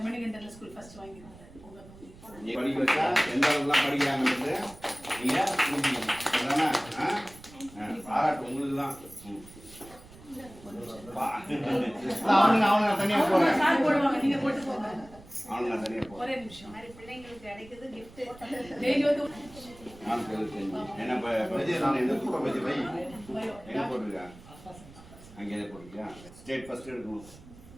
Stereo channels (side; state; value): right; noise; rumble, 20 dB below the sound